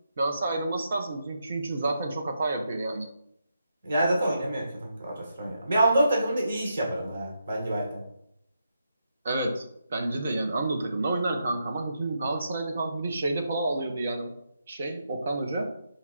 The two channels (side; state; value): both; inverted; correlation -0.83